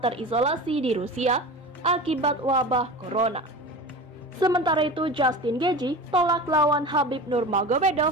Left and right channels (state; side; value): normal; both; correlation 0.32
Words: di Rusia akibat wabah corona. Sementara itu, Justin Gaethje tolak lawan Khabib